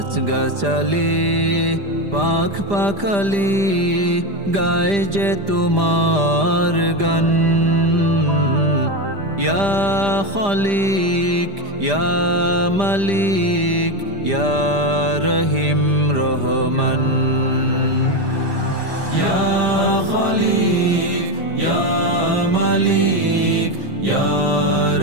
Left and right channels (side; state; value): left; late; 5.0 ms